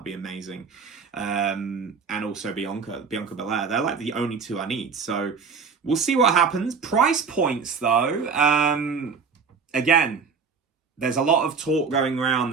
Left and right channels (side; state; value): left; quieter; 5.5 dB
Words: be amazing. And also Bianca Belair. They're like the only 2 I need. So we'll see what happens. Price points though, again, there's a lot of talk going around.